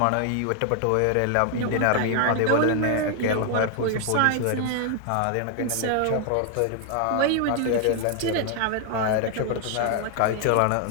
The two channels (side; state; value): both; different; correlation 0.00